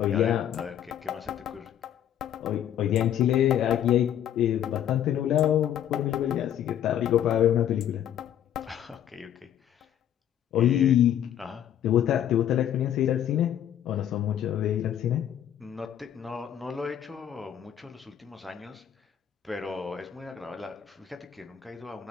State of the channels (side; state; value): right; quieter; 10.4 dB